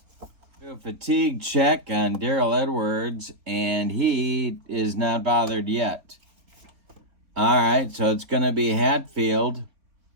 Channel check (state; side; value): late; left; 3.8 ms